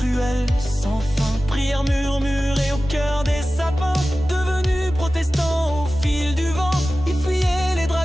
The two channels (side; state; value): both; normal; correlation 0.96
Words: sans fin. Prières murmurées au cœur des sapins, devenus protestants au fil du vent. Ils fuyaient les